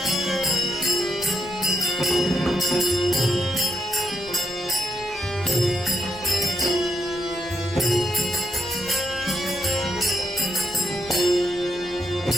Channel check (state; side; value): noise; left; rumble, 21 dB below the sound